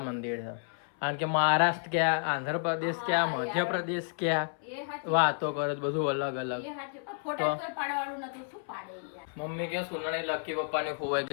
મંદિર છે. કારણ કે મહારાષ્ટ્ર ક્યાં, આંધ્રપ્રદેશ ક્યાં, મધ્યપ્રદેશ ક્યાં, વાતો કરે બધું અલગ અલગ. મમ્મી કે સોનાની લકી પપ્પાની ખોવાઈ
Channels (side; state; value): right; silent; 57 dB below the other